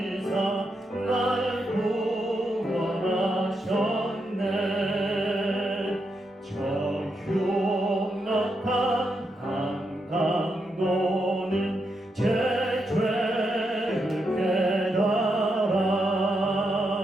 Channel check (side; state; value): both; normal; correlation 0.83